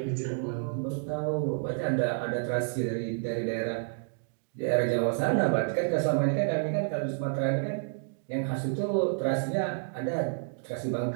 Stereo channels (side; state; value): left; silent; digital silence